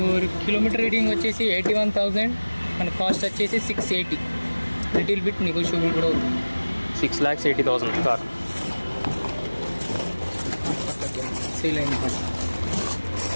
కిలోమీటర్ రీడింగ్ వచ్చేసి 81,000. మన కాస్ట్ వచ్చేసి 680. లిటిల్ బిట్ నెగోషియబుల్ కూడా అవుతుంది. 6,80,000 కార్. సేల్ అయింది.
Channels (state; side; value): inverted; both; correlation -1.00